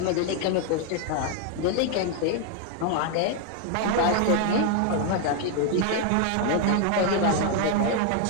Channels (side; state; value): both; different; correlation 0.01